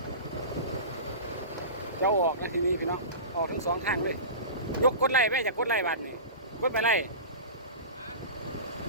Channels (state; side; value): inverted; both; correlation -0.31